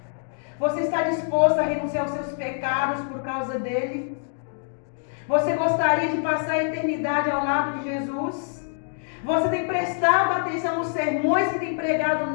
Você está disposto a renunciar aos seus pecados por causa dele? Você gostaria de passar a eternidade ao lado de Jesus? Você tem prestado atenção nos sermões que tem pregado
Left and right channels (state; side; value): silent; right; digital silence